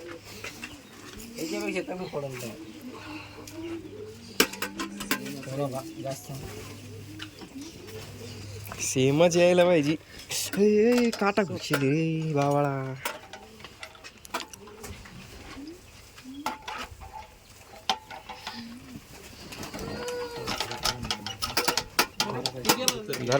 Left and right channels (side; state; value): both; identical; correlation 1.00